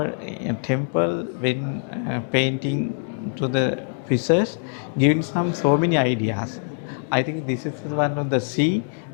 temple when painting to the research, giving so many ideas. I think this is one of the sea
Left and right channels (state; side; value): silent; right; 62 dB below the other